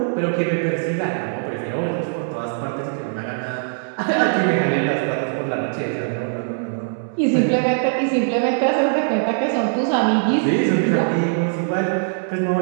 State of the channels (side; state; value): left; silent; 64 dB below the other